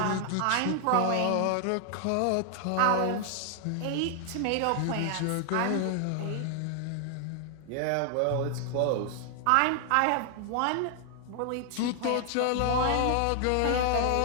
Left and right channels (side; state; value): both; different; correlation 0.00